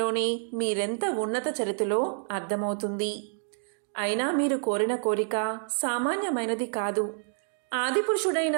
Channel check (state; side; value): silent; left; digital silence